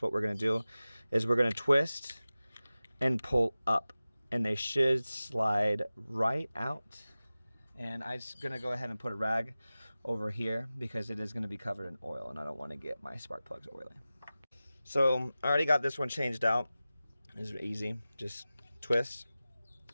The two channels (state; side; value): inverted; both; correlation -0.96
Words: what we're going to do is we're going to twist and pull up, and they should slide right out. And I'm just going to go ahead and put a rag over here because it is going to be covered in oil, and I don't want to get my spark plugs oily. So I already got this one changed out. It's easy. Just twist.